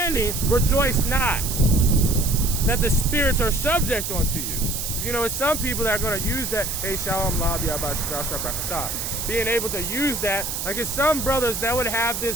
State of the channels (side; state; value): right; noise; hiss, 4 dB below the sound